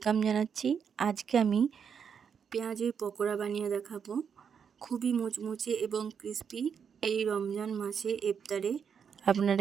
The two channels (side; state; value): left; quieter; 7.0 dB